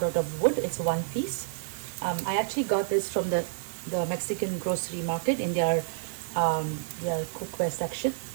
out of wood. It's 1 piece. I actually got this from the Mexican grocery market in their cookware section.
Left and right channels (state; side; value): silent; left; digital silence